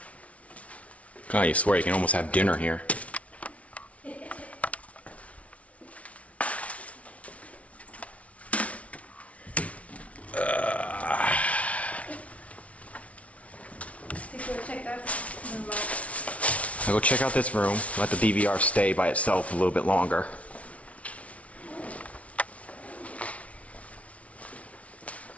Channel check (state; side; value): late; right; 0.065 ms